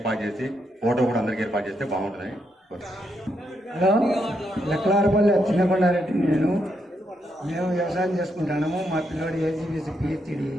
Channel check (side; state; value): both; normal; correlation 0.80